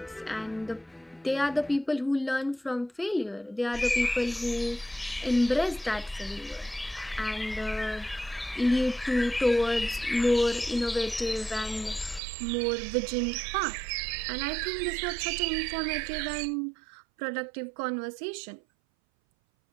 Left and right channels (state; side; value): drops out; left; at 12.2 s